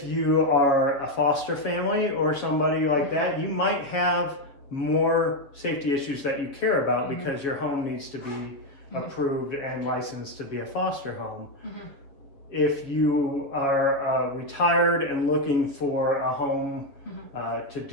you are a foster family or somebody like that, you might have more safety issues that you care about because your home needs to be approved and licensed to be a foster home. If you are retired and looking for a home to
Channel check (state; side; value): late; right; 7.0 ms